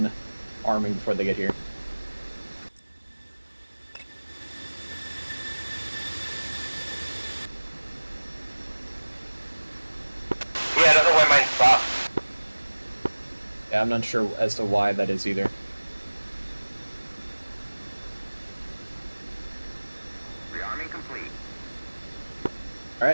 arming before they get here. Yeah, I don't know why mine stopped. Yeah, I'm not sure as to why that is either. Rearming complete.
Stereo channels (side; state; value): both; inverted; correlation -1.00